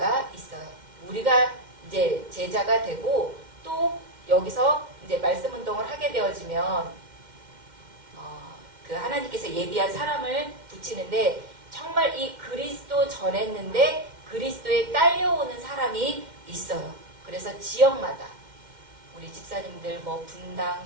있어요. 우리가 이제 제자가 되고 또 여기서 이제 말씀 운동을 하게 되어지면 그 하나님께서 예비한 사람을 붙이는데 정말 이 그리스도 전했는데 그리스도에 딸려오는 사람이 있어요. 그래서 지역마다 우리 집사님들 뭐 분당,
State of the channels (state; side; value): late; left; 2.1 ms